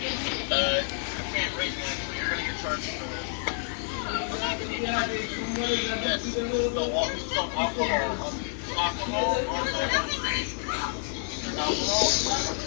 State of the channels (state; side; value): silent; right; 59 dB below the other